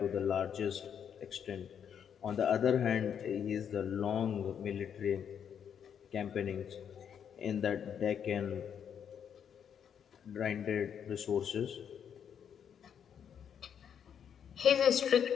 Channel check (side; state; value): right; quieter; 8.2 dB